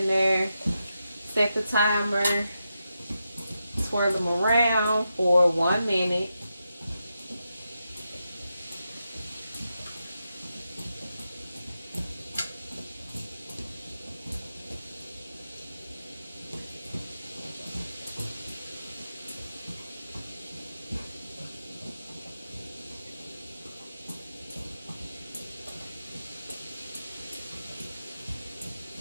there, set the timer, swirl them around for 1 minute.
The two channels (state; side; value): inverted; both; correlation -0.87